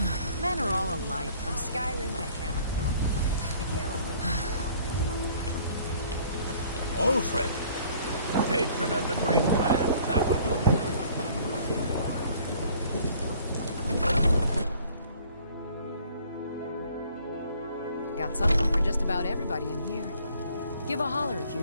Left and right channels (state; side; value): inverted; both; correlation -0.55